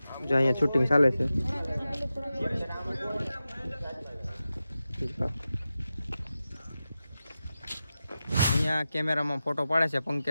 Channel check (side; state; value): both; inverted; correlation -0.92